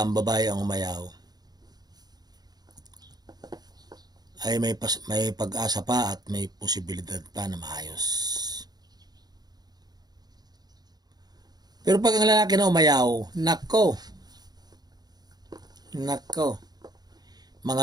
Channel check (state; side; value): late; left; 0.19 ms